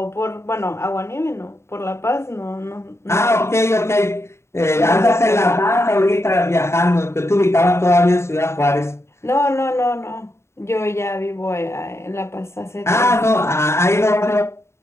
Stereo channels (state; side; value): late; right; 0.13 ms